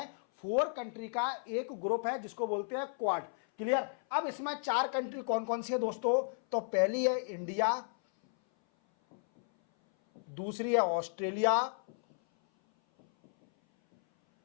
4 कंट्री का एक ग्रुप है जिसको बोलते हैं क्वाड। क्लियर? अब इसमें 4 कंट्री कौन कौन सी है दोस्तों? तो पहली है इंडिया, दूसरी है ऑस्ट्रेलिया,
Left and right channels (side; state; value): right; silent; 55 dB below the other